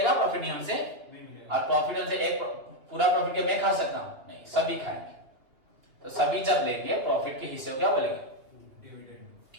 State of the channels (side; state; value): left; late; 2.8 ms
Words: प्रॉफिट नहीं हमसे, और प्रॉफिट हमसे एक पूरा प्रॉफिट के मैं खा सकता हूं नहीं, सभी खाएंगे। तो सभी जब लेंगे प्रॉफिट के हिस्से को क्या बोलेंगे? डिविडेंड।